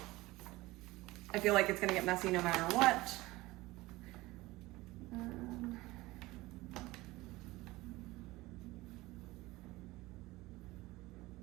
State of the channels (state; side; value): quieter; left; 19.8 dB